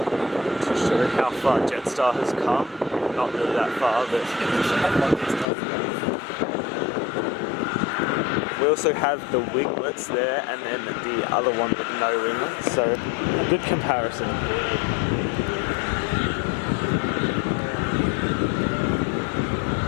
to show how far JetStar has come. Not really that far, but we also have the winglets there and then the other one with no winglets, so a good comparison.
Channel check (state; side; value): drops out; right; at 5.5 s